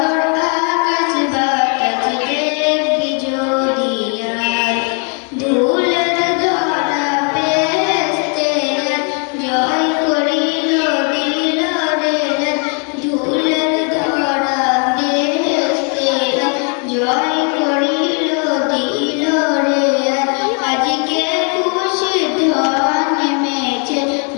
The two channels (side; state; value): right; quieter; 38.8 dB